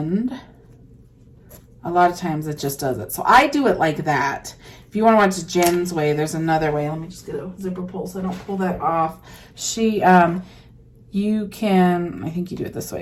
a lot of times it just does it. So I do it like that. If you want to watch Jen's way, there's another way. Let me just get a zipper pull so I don't pull that off. You can, I think you do it this way.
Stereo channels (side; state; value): both; identical; correlation 1.00